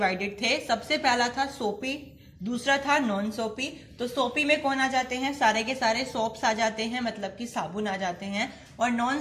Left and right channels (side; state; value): both; identical; correlation 1.00